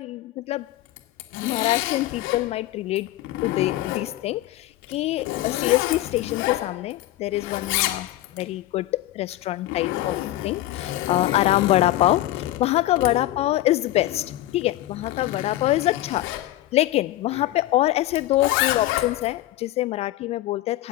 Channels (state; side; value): quieter; right; 15.3 dB